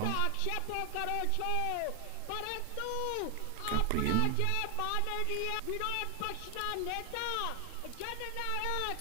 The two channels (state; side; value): different; both; correlation 0.00